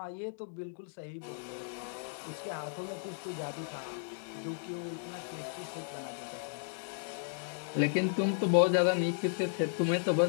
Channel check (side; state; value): right; silent; digital silence